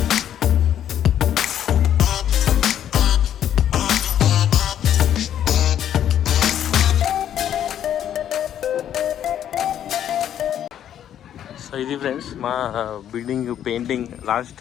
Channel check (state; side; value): quieter; right; 10.3 dB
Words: సో ఇది ఫ్రెండ్స్ మా బిల్డింగ్ పెయింటింగ్ లాస్ట్